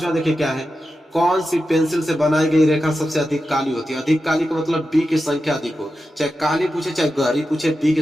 देखिए क्या है, कौन सी पेंसिल से बनाई गई रेखा सबसे अधिक काली होती है। अधिक काली का मतलब बी की संख्या अधिक हो, चाहे काली पूछे चाहे गहरी पूछे, बी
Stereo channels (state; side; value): normal; both; correlation 0.91